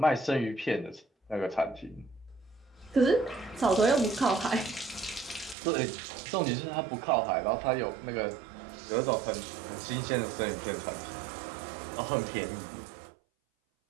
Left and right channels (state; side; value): drops out; left; at 5.6 s